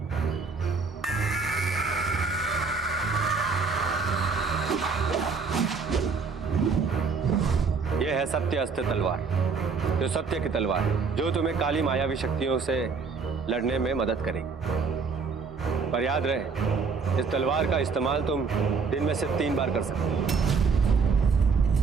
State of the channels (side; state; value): left; quieter; 5.0 dB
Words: यह है सत्य अस्त्र तलवार, जो सत्य की तलवार है, जो तुम्हें काली मायावी शक्तियों से लड़ने में मदद करेगी। पर याद रहे, इस तलवार का इस्तेमाल तुम दिन में से 3 बार कर सकते हो।